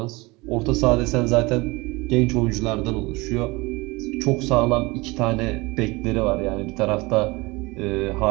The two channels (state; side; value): quieter; left; 23.6 dB